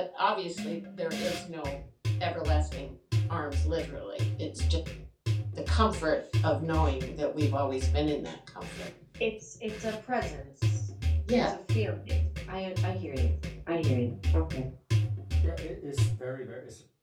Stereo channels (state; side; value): identical; both; correlation 1.00